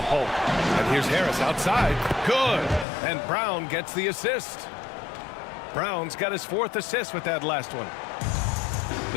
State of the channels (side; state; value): right; drops out; at 2.9 s